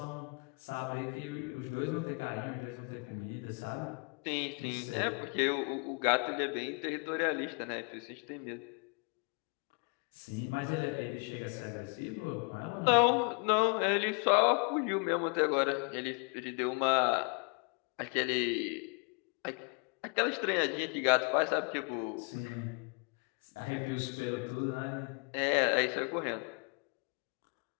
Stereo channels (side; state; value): right; quieter; 36.3 dB